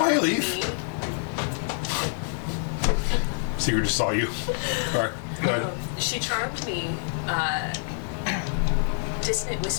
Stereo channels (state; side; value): silent; right; 59 dB below the other